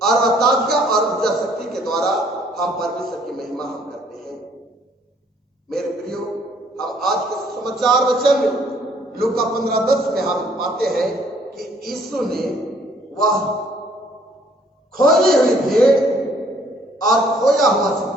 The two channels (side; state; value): both; normal; correlation 0.62